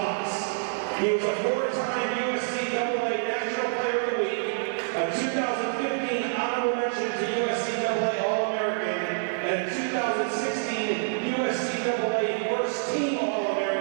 He was a 4-time USCAA National Player of the Week, a 2015 honorable mention to USCAA All-American, and a 2016 USCAA First Team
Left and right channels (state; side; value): silent; left; digital silence